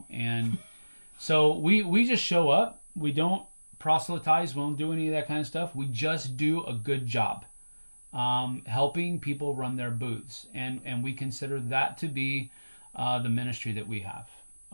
and so we just show up. We don't proselytize. We don't do any of that kind of stuff. We just do a good job helping people run their booths, and we consider that to be the ministry that we have.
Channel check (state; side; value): inverted; both; correlation -1.00